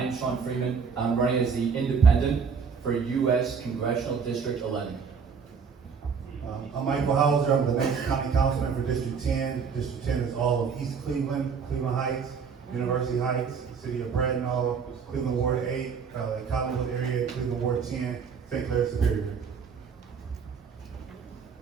is Freeman. I'm running as the independent for U.S. Congressional District 11. I'm Michael Hauser. I'm the next county councilman for District 10. District 10 is all of East Cleveland, Cleveland Heights, University Heights, City of Bradenton, Cleveland Ward 8, Collinwood area, Cleveland Ward 10, St. Clair Superior.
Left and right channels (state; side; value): quieter; left; 6.0 dB